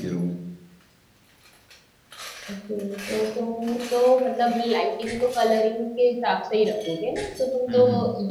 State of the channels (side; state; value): both; identical; correlation 1.00